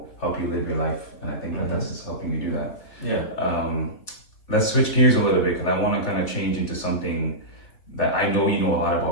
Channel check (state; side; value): late; right; 3.5 ms